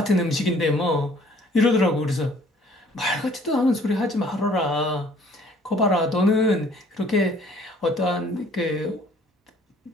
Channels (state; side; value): normal; both; correlation 0.57